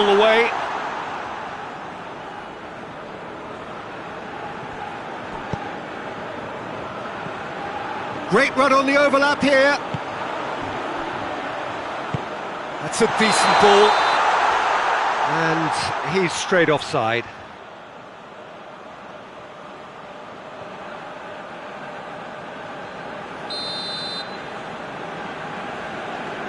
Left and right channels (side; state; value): both; identical; correlation 1.00